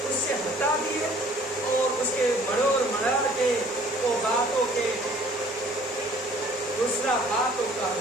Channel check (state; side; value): normal; both; correlation 0.55